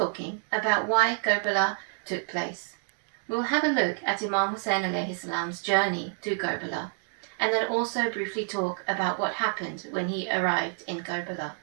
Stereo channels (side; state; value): left; silent; digital silence